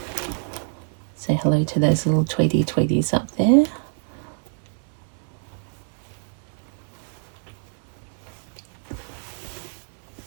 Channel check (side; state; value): left; silent; digital silence